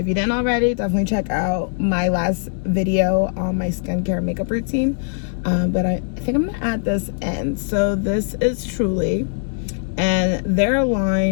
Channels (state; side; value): silent; right; 65 dB below the other